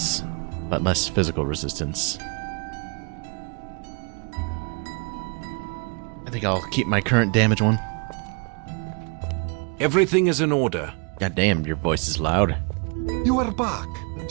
but less physical resistance. I think I'll keep my current damage one. Everything is in order. God damn, your voice is loud. You are back.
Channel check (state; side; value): quieter; left; 35.3 dB